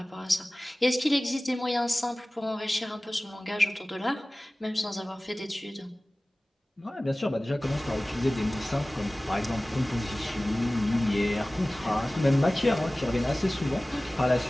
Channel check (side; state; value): both; normal; correlation 0.97